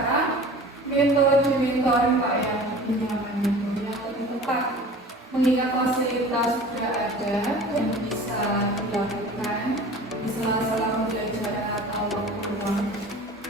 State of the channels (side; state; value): both; normal; correlation 0.41